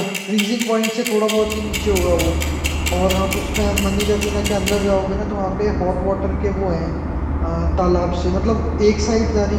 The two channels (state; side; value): identical; both; correlation 1.00